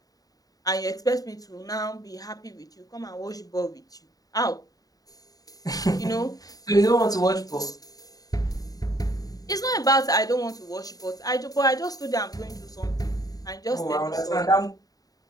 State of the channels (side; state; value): right; late; 0.18 ms